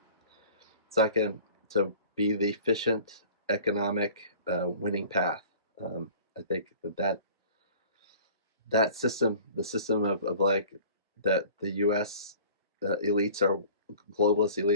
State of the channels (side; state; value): both; inverted; correlation -0.45